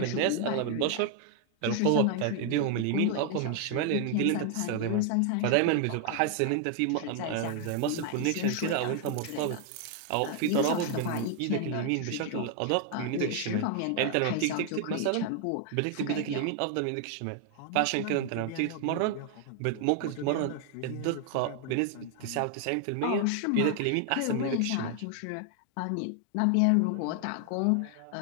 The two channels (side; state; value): both; different; correlation 0.00